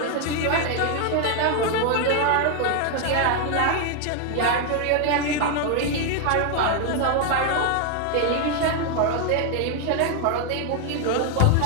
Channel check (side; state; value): both; different; correlation 0.01